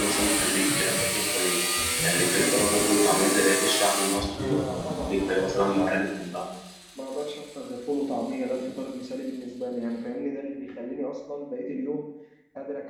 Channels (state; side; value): identical; both; correlation 1.00